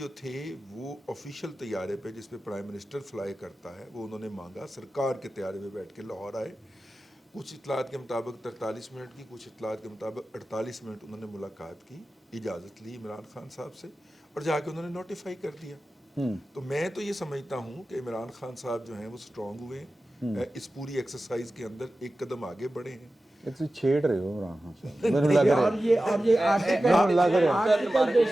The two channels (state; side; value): normal; both; correlation 0.94